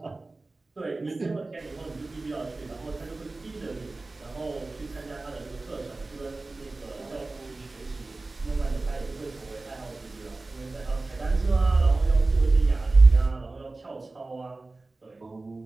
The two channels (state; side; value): quieter; left; 3.3 dB